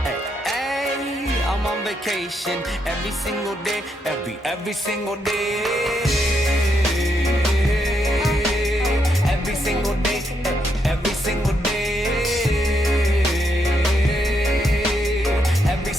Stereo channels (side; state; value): both; normal; correlation 0.78